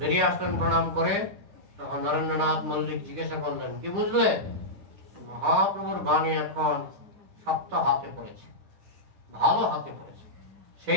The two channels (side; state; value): left; late; 9.8 ms